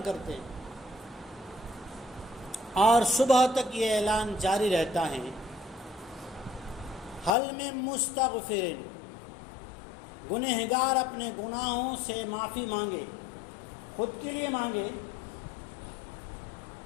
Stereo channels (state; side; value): drops out; right; at 7.3 s